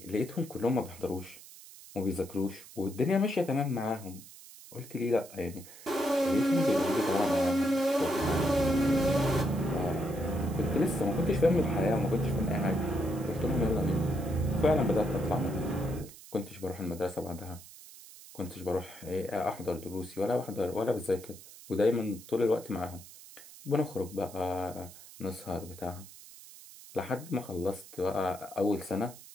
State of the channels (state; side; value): noise; right; hiss, 18 dB below the sound